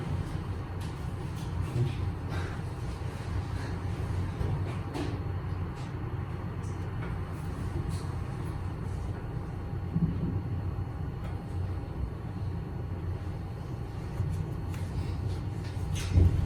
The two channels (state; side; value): identical; both; correlation 1.00